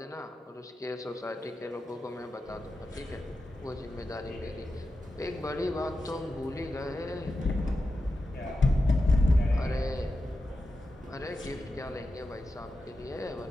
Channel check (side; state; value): both; normal; correlation 0.91